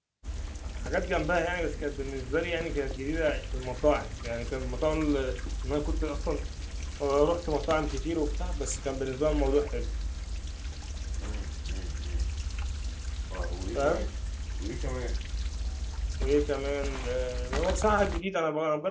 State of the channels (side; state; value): both; identical; correlation 1.00